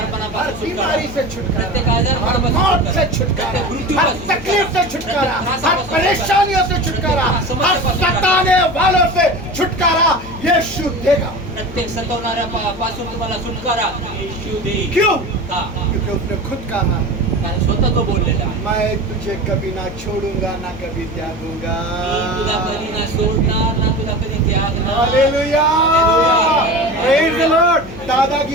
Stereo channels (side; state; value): left; noise; hum, 15 dB below the sound